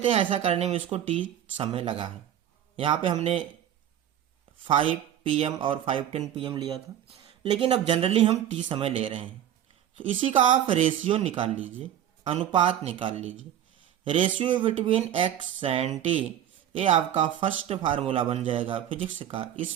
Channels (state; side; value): quieter; left; 10.7 dB